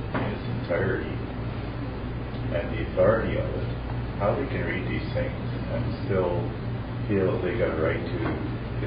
in its entirety and the authority of it, how they can read these things and still feel that they got a right to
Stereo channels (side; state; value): both; identical; correlation 1.00